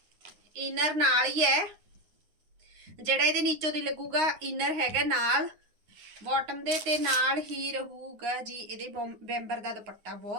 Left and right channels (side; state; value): left; late; 9.6 ms